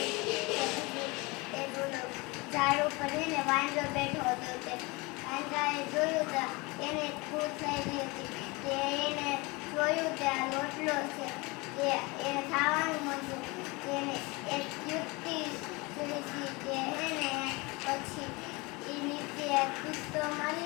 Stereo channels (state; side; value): quieter; right; 25.5 dB